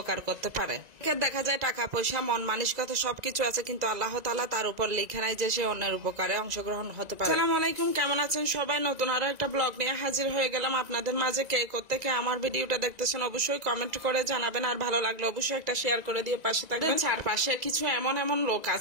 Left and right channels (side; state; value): left; late; 2.0 ms